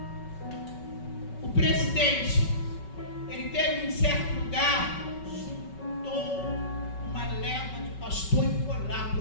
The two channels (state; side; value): late; right; 5.3 ms